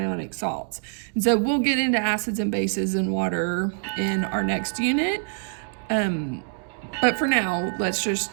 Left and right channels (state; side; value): silent; left; digital silence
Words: salts. And so we'll get into acids and bases and water in our next unit. But for now, let's